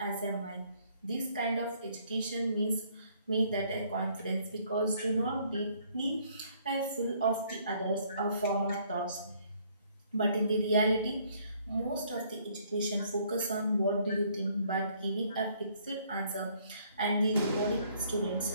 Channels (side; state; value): both; inverted; correlation -0.64